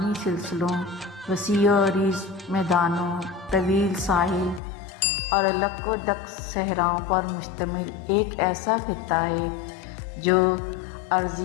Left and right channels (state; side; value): drops out; right; at 4.6 s